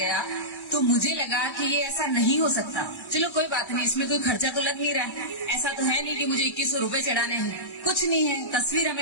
तो मुझे लगा कि ये ऐसा नहीं हो सकता। चलो कोई बात नहीं, इसमें कोई खर्चा तो लग नहीं रहा, ऐसा तो है नहीं कि मुझे 2100 रुपए चढ़ाने हैं, कुछ नहीं है। तस्वीर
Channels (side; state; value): right; late; 1.1 ms